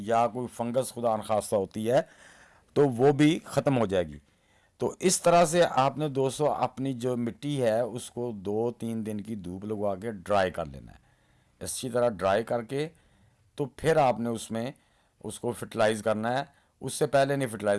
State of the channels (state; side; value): identical; both; correlation 1.00